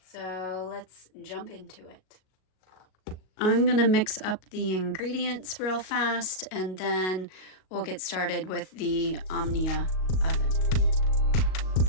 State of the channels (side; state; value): right; late; 38 ms